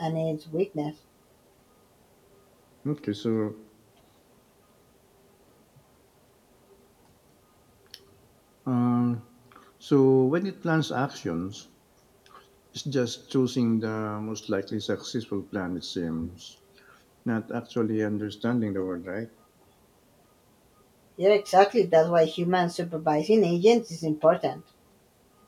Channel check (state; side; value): identical; both; correlation 1.00